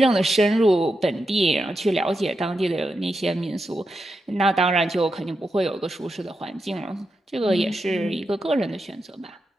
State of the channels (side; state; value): both; normal; correlation 0.87